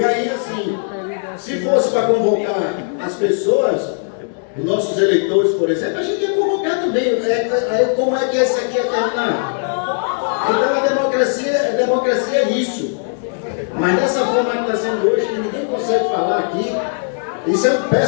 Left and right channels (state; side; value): silent; right; digital silence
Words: aí, assim, se fosse para convocar as pessoas, os nossos eleitores, por exemplo, a gente ia convocar também. Aí, como é que esse aqui ia terminar? Então a democracia é isso. Mas dessa forma que está sendo hoje, que ninguém consegue falar aqui, isso é um